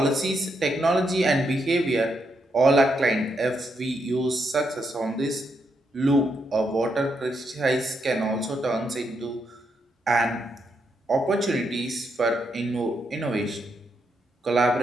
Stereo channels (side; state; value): both; normal; correlation 0.80